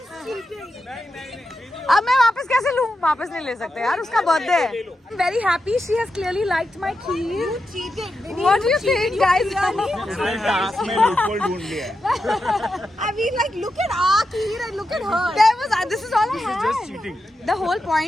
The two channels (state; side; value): normal; both; correlation 0.88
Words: अब मैं वापस कैसे लूँ? वापस नहीं ले सकते यार, उसका बर्थडे है। Very happy. She has clearly liked my kheer. What do you think, guys? में loophole ढूंढ लिया है. I mean like look at our kheer and look at her. There was. This is all I had. Just cheating. The whole